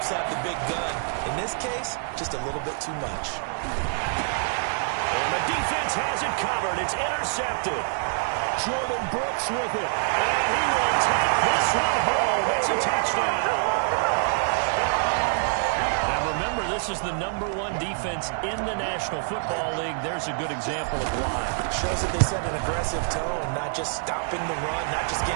have the big gun. In this case, just a little bit too much. And the defense has it covered. It's intercepted. Jordan Brooks with it. And he will take this one home. It's a touchdown. Remember, this is the #1 defense in the National Football League. There's a good example of why. Shows that they set an aggressive tone, not just stopping the run, not just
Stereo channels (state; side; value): silent; left; digital silence